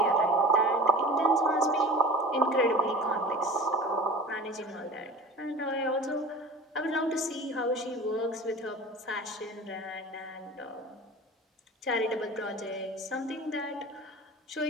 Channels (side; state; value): both; normal; correlation 0.37